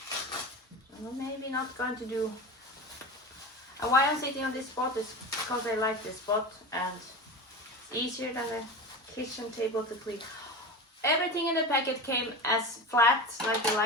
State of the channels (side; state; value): both; normal; correlation 0.27